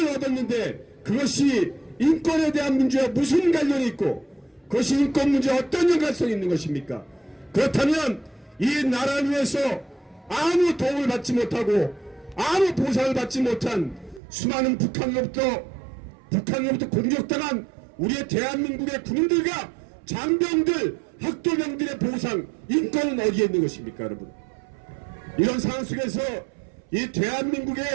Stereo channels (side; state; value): left; drops out; at 14.2 s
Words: 얻었는데 그것이 인권에 대한 문제와 무슨 관련이 있고 그것이 인권 문제와 어떤 연관성이 있는 것입니까? 그렇다면 이 나라를 위해서 아무 도움을 받지 못하고 아무 보상을 받지 못한 수많은 북한으로부터 공격당한 우리의 대한민국의 군인들과 장병들, 학도병들의 보상, 인권은 어디에 있는 것입니까, 여러분? 이런 상황 속에서 이